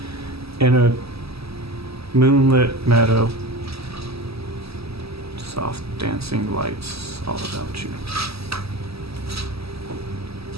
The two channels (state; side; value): late; left; 0.78 ms